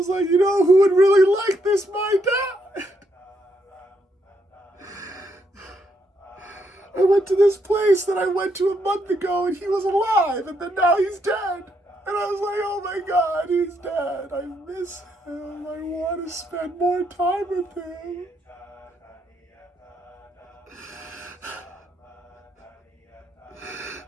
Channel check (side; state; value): both; normal; correlation 0.76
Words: like, you know who would really like this? My dad. I went to this place that I went to a month ago and he was alive, and then now he's dead. And I was like, oh my God, he's dead. I miss him. I want to spend more time with him.